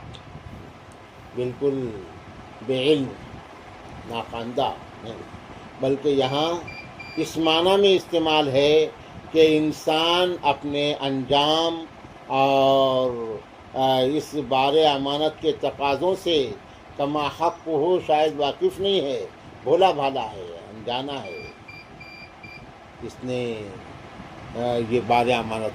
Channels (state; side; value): identical; both; correlation 1.00